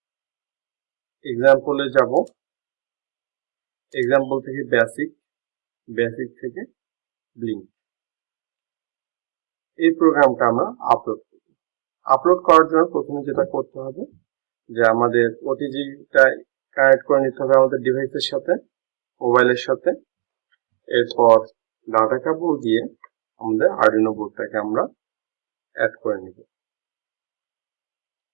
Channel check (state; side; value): silent; left; digital silence